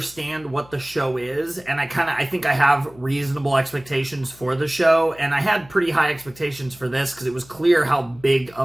what the show is, and I think I have reasonable expectations for the show, and I had pretty high expectations for this because it was clear how big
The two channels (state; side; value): noise; left; hum, 24 dB below the sound